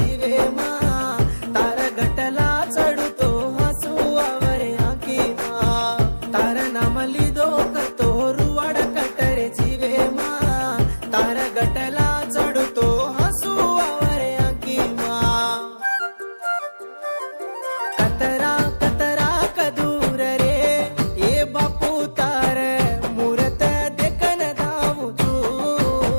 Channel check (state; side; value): inverted; both; correlation -1.00